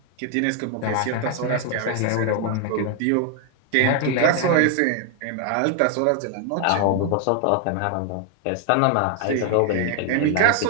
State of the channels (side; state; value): both; different; correlation 0.00